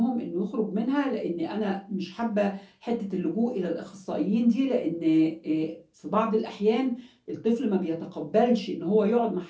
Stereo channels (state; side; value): identical; both; correlation 1.00